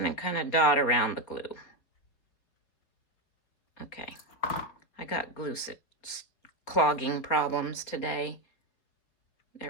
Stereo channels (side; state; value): right; late; 4.5 ms